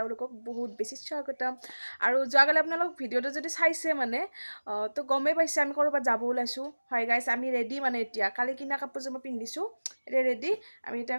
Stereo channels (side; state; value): both; inverted; correlation -1.00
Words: বহুত বেছি স্বাগতম। আৰু যোৱাকালি আপোনালোক ভিডিঅ'টো যদি চাইছে মানে তো গমেই পাইছে আমি ক'ৰবাত যাব ওলাইছোঁ। হয় গাইছ, আমি ৰেডি মানে এতিয়া কালি কিনা কাপোৰযোৰ মই পিন্ধিছোঁ, এতিয়া ৰেডি। আমি এতিয়া